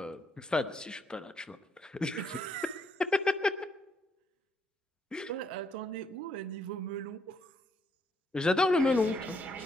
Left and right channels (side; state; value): both; normal; correlation 0.73